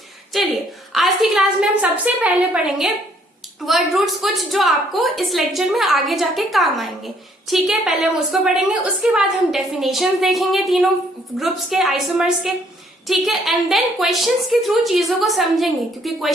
चलिए, आज की क्लास में हम सबसे पहले पढ़ेंगे वर्ड रूट्स, कुछ जो आपको इस लेक्चर में आगे जाके काम आएंगे। ठीक है, पहले हम उसको पढ़ेंगे, उसके बाद हम डेफिनेशंस देखेंगे तीनों ग्रुप्स के, आइसोमर्स के। ठीक है, एंड देन क्वेश्चंस के थ्रू चीजों को समझेंगे, क्योंकि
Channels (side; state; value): both; normal; correlation 0.65